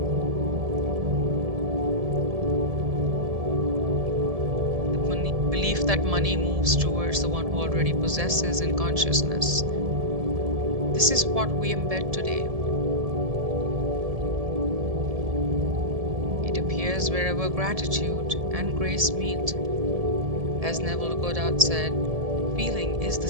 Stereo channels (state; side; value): late; left; 1.7 ms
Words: The belief that money moves towards the one who already possesses in consciousness. This is what we embed today. It appears wherever gratitude and grace meet. As Neville Goddard said, feeling is the